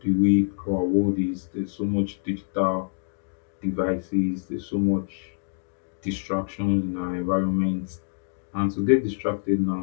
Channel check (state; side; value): silent; right; digital silence